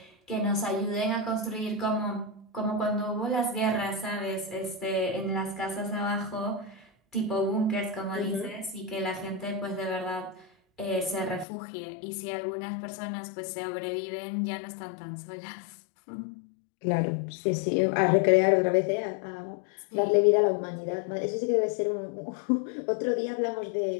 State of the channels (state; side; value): drops out; right; at 11.5 s